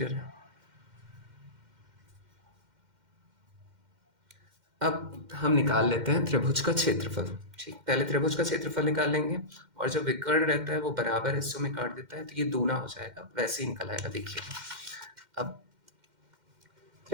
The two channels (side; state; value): left; late; 2.1 ms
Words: है। अब हम निकाल लेते हैं त्रिभुज का क्षेत्रफल, ठीक। पहले त्रिभुज का क्षेत्रफल निकाल लेंगे और जो विकर्ण रहता है वो बराबर हिस्सों में काट देता है तो ये दूना हो जाएगा, वैसे ही निकल आएगा। देखिए अब